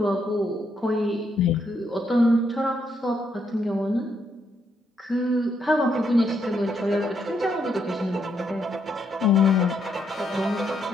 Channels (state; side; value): normal; both; correlation 0.76